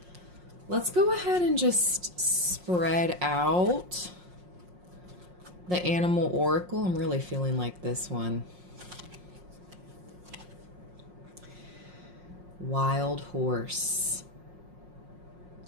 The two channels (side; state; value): left; late; 5.6 ms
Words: Let's go ahead and just spread out the animal oracle. I'm really feeling like this one. Wild horse.